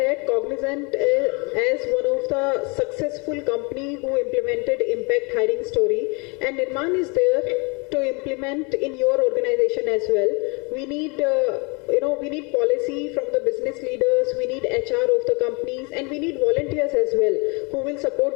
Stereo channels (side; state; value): right; quieter; 31.0 dB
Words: Cognizant, as one of the successful company who implemented impact hiring story, and Nirman is there to implement in your organization as well. We need, we need policy from the business leaders, we need HR of the companies, and we need volunteers as well who will